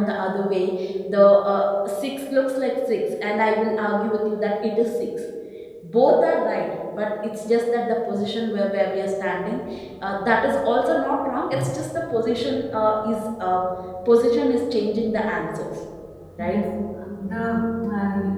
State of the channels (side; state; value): both; identical; correlation 1.00